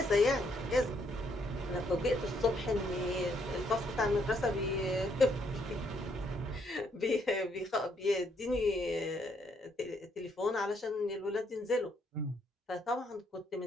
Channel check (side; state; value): both; normal; correlation 0.72